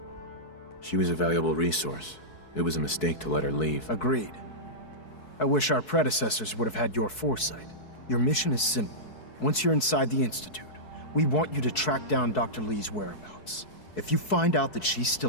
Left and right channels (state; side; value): late; right; 4.7 ms